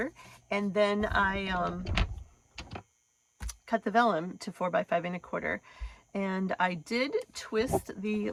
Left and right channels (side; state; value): both; identical; correlation 1.00